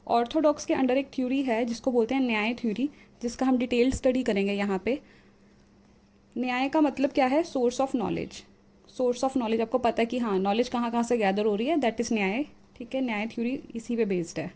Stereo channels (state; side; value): identical; both; correlation 1.00